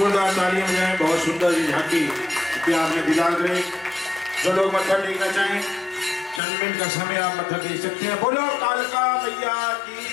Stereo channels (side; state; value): right; drops out; at 6.4 s